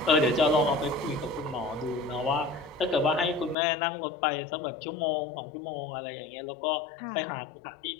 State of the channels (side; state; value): right; drops out; at 3.6 s